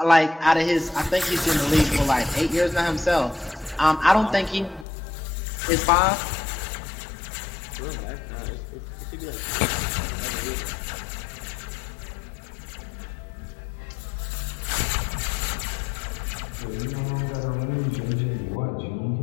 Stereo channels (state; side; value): drops out; right; at 4.9 s